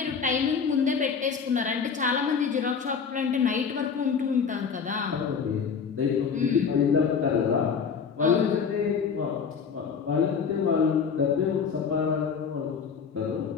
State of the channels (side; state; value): right; quieter; 6.2 dB